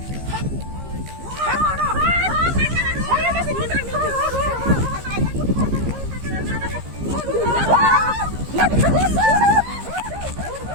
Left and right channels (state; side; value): late; left; 15 ms